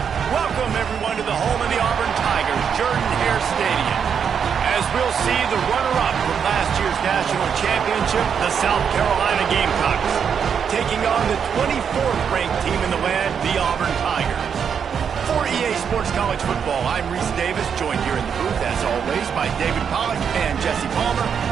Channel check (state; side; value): quieter; left; 7.2 dB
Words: Welcome, everyone, to the home of the Auburn Tigers, Jordan-Hare Stadium. As we'll see the runner-up from last year's national championship, the South Carolina Gamecocks, taking on the 24th ranked team in the land, the Auburn Tigers. For EA Sports College Football, I'm Reese Davis, joined here in the booth, as always, by David Pollack and Jesse Palmer.